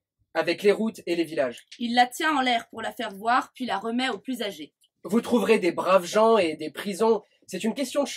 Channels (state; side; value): identical; both; correlation 1.00